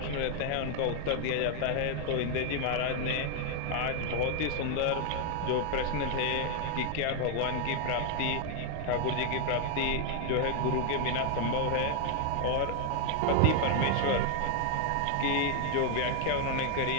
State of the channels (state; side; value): different; both; correlation 0.00